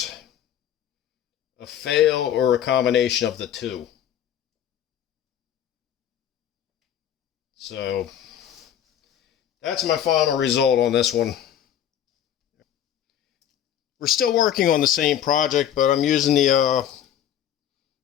a fail, or a combination of the two. So, that's my final result on this one. We're still working on the same project, but I'm using the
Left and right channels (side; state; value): right; quieter; 10.2 dB